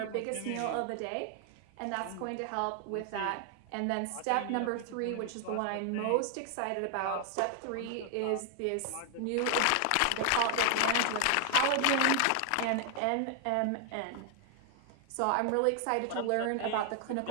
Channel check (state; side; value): different; both; correlation 0.00